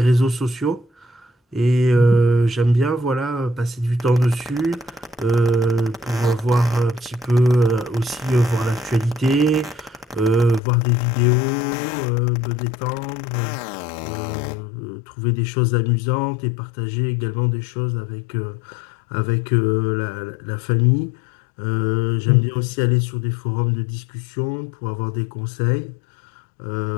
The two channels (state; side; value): drops out; right; at 10.6 s